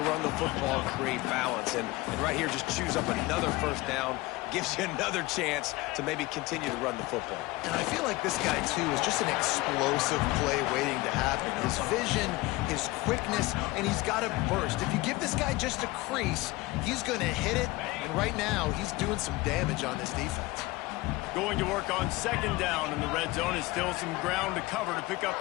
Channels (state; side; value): quieter; right; 20.9 dB